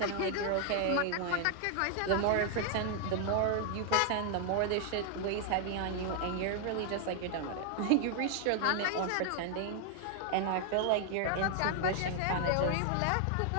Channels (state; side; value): different; both; correlation 0.00